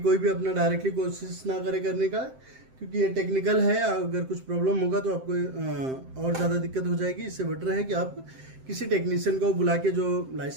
भी अपना डायरेक्टली कोशिश ना करे करने का, क्योंकि ये टेक्निकल है। अगर कुछ प्रॉब्लम होगा तो आपको और ज़्यादा दिक्कत हो जाएगी। इससे बेटर है कि आप किसी टेक्नीशियन को बुला के, जो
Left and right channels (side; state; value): left; late; 7.7 ms